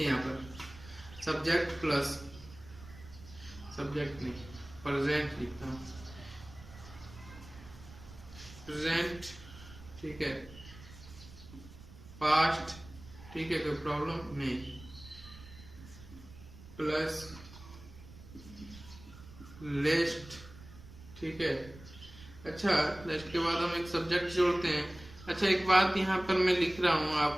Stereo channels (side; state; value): right; noise; rumble, 18 dB below the sound